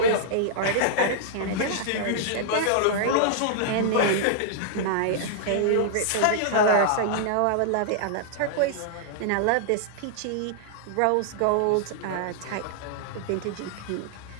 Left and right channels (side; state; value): both; different; correlation -0.01